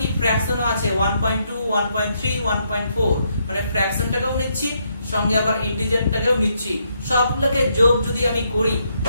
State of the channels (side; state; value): both; inverted; correlation -0.76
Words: ফ্র্যাকশনও আছে 1.2 1.3 1.4, মানে ফ্র্যাকশনটাকেও নিচ্ছি সঙ্গে আবার ইন্টিজারটাকেও নিচ্ছি। সবগুলোকে যোগ যদি আমি করি